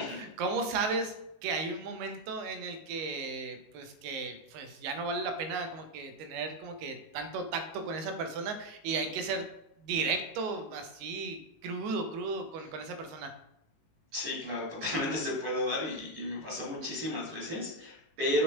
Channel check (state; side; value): late; left; 19 ms